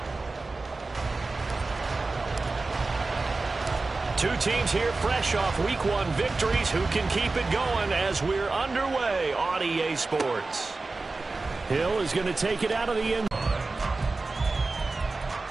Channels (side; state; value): left; quieter; 3.6 dB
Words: Two teams here fresh off Week 1 victories. Who can keep it going as we're underway on EA Sports? Hill is going to take it out of the end.